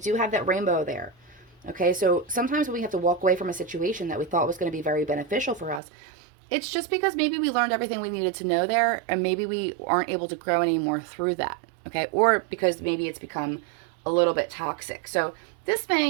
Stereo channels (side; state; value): left; drops out; at 5.8 s